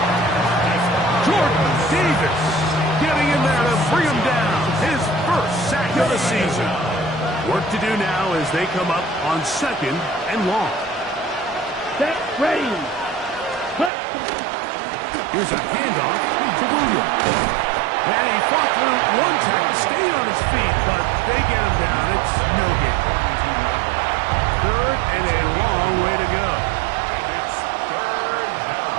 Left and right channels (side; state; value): left; drops out; at 13.9 s